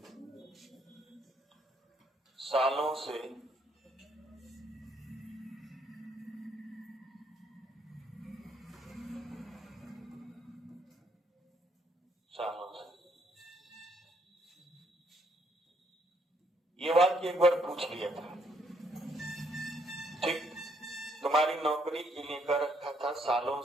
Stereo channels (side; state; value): both; normal; correlation 0.71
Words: सालों से, सालों से। ये वाक्य एक बार पूछ लिया था, ठीक। तुम्हारी नौकरी के लिए कर रखा था सालों